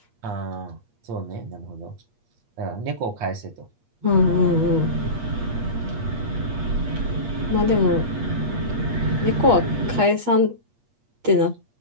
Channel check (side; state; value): left; late; 8.4 ms